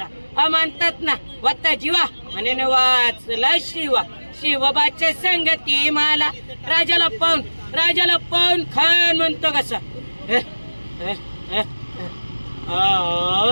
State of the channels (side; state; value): both; inverted; correlation -1.00